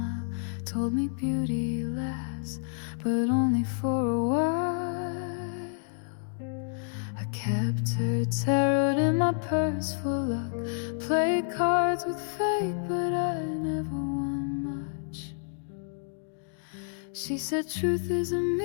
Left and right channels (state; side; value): silent; right; digital silence